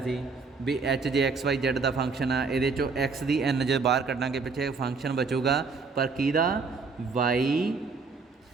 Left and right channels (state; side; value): quieter; left; 4.6 dB